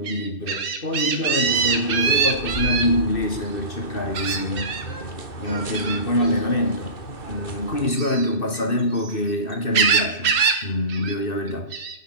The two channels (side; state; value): right; late; 2.6 ms